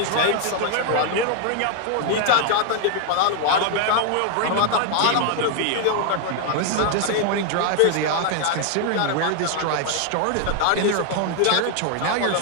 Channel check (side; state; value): both; different; correlation 0.00